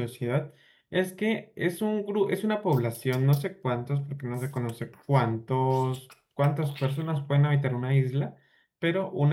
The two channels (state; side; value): identical; both; correlation 1.00